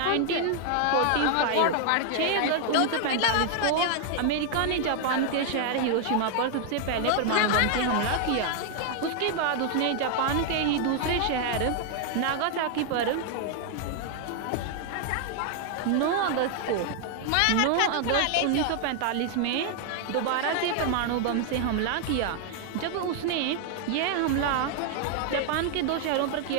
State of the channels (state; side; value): different; both; correlation 0.00